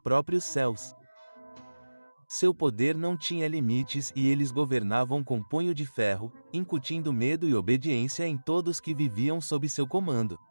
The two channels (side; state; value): both; inverted; correlation -1.00